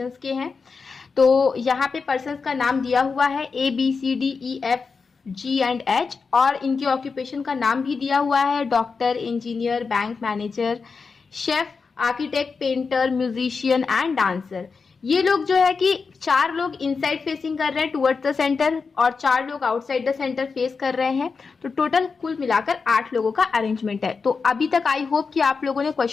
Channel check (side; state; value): right; quieter; 4.9 dB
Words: के हैं। तो यहाँ पे पर्सन्स का नाम दिया हुआ है ABCDEFG&H और इनके ऑक्यूपेशन का नाम भी दिया हुआ है doctor, engineer, bank manager, chef, architect, painter, musician and dancer. ये लोग जो है कि 4 लोग इनसाइड फेसिंग कर रहे हैं टुवर्ड्स द सेंटर और 4 लोग आउटसाइड द सेंटर फेस कर रहे हैं। तो टोटल कुल मिलाकर 8 लोगों का अरेंजमेंट है। तो अभी तक आई होप कि आप लोगों ने